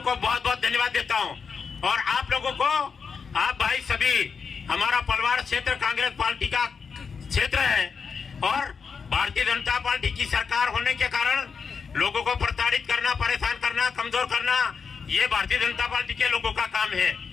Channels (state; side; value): quieter; right; 5.7 dB